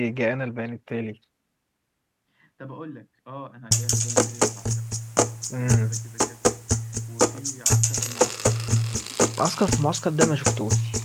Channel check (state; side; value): identical; both; correlation 1.00